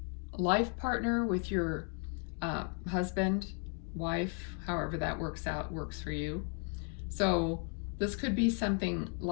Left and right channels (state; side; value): quieter; right; 38.4 dB